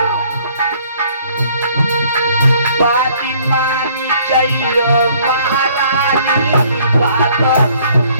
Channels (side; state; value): both; inverted; correlation -0.60